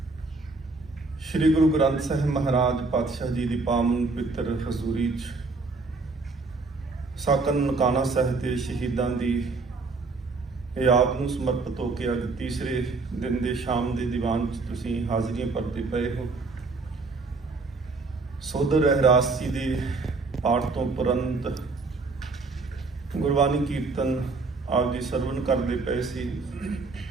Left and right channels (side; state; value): left; quieter; 3.8 dB